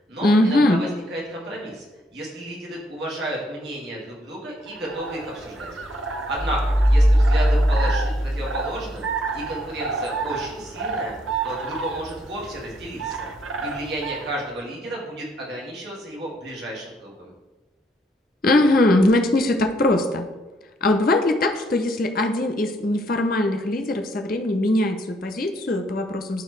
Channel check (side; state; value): both; normal; correlation 0.70